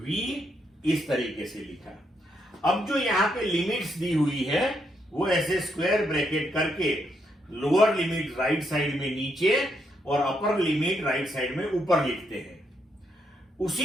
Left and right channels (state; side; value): normal; both; correlation 0.77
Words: इस तरीके से लिखा। अब जो यहां पे लिमिट्स दी हुई है वो ऐसे स्क्वायर ब्रैकेट करके लोअर लिमिट राइट साइड में नीचे और अपर लिमिट राइट साइड में ऊपर लिखते हैं।